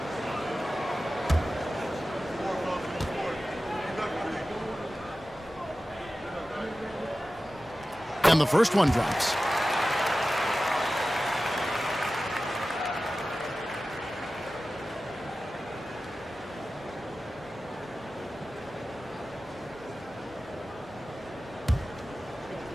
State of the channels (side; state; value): both; normal; correlation 0.95